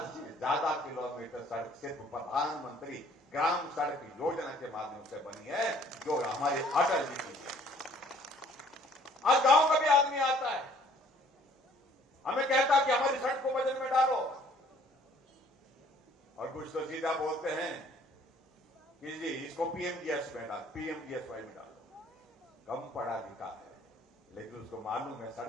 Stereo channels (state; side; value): normal; both; correlation 0.59